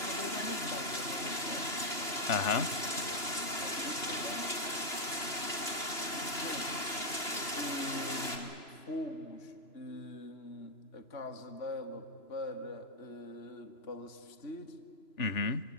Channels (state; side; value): late; right; 3.0 ms